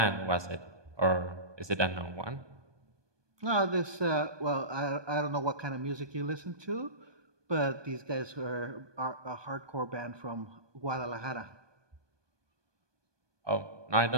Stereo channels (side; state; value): left; late; 1.2 ms